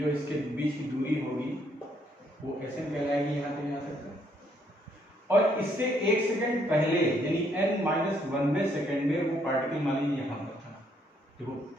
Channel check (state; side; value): normal; both; correlation 0.70